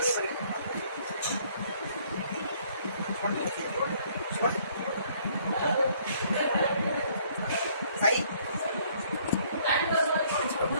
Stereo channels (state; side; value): inverted; both; correlation -0.63